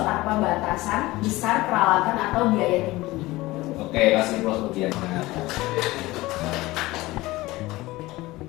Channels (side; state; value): right; quieter; 19.4 dB